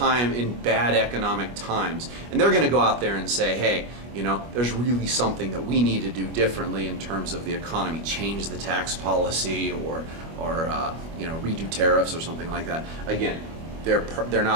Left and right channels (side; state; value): left; late; 25 ms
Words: bad economic times, and they're going to go out there and say, hey, you know, there's really something that we need to do differently in terms of the economy, change the tax policy or redo tariffs or something like that. Again, they're